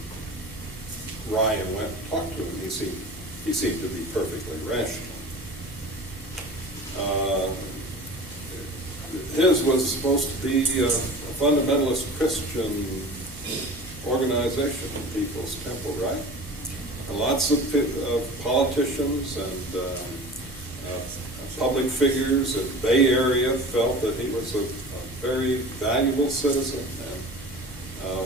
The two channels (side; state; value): both; normal; correlation 0.37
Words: Ryan went and talked to him, he seemed to be perfectly rational. His was supposed to be a fundamentalist Christian organization, People's Temple, right? And lots of politicians and public figures in the Bay Area felt that he was a very valuable citizen,